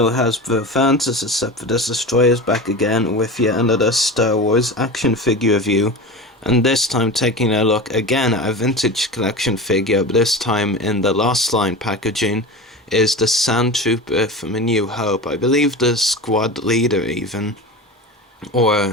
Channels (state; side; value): normal; both; correlation 0.29